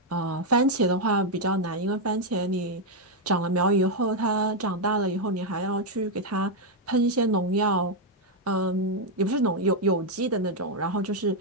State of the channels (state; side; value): normal; both; correlation 0.00